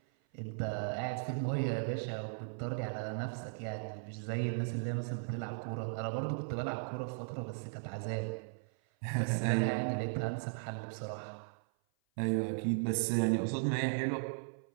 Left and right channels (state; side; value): silent; left; 53 dB below the other